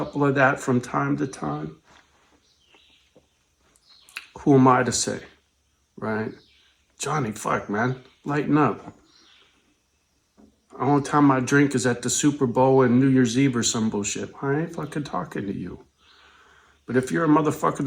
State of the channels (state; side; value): identical; both; correlation 1.00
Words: of that from time to time. Who am I to say, right? Johnny, fuck, man, lighten up. The only time I drink is at the Super Bowl and New Year's Eve or some bullshit. I ain't fucking talking to you. But if you're a motherfucker